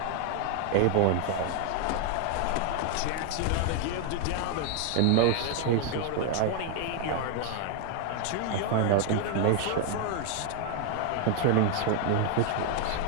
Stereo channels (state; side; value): different; both; correlation 0.01